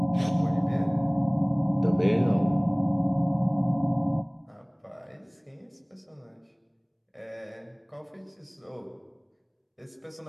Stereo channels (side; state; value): both; identical; correlation 1.00